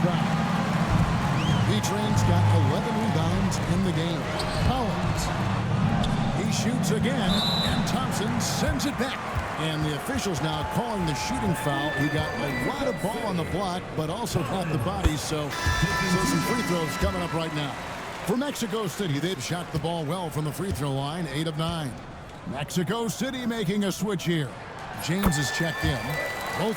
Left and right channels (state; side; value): identical; both; correlation 1.00